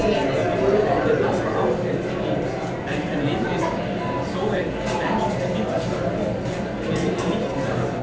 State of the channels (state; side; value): identical; both; correlation 1.00